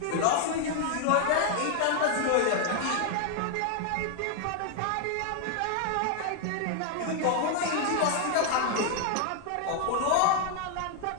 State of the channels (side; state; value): both; different; correlation 0.00